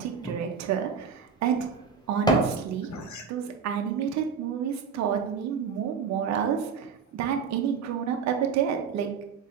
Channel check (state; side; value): quieter; left; 6.3 dB